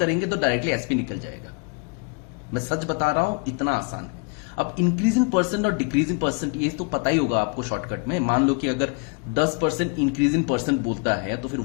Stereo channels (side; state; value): right; quieter; 32.5 dB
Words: तो डायरेक्टली एसपी निकल जाएगा। मैं सच बता रहा हूं, इतना आसान है। अब इंक्रीज इन परसेंट और डिक्रीज इन परसेंट ये तो पता ही होगा आपको शॉर्टकट में। मान लो कि अगर 10% इंक्रीज इन परसेंट बोलता है तो फिर